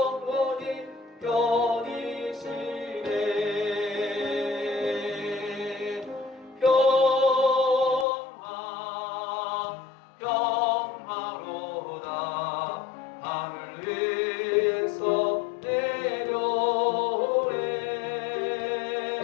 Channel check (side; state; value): right; drops out; at 8.1 s